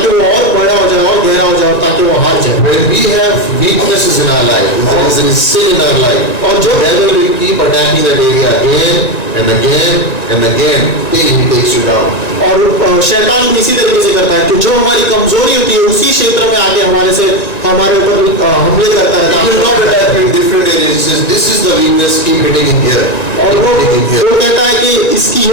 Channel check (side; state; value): right; late; 1.9 ms